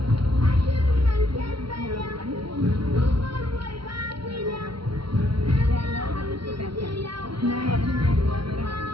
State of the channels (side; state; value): left; late; 0.74 ms